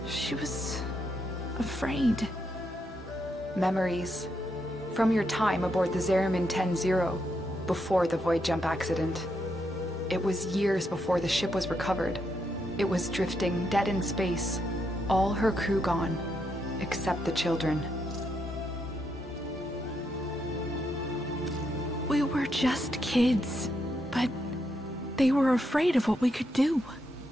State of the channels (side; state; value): both; normal; correlation 0.80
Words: She was... afraid. Memories. From your time aboard the Zariman 10-0, before the void jump accident. It was years before the ship was recovered. It was drifting dead in space. All her crew gone, except the children. We were just kids, but they were afraid of what we could do.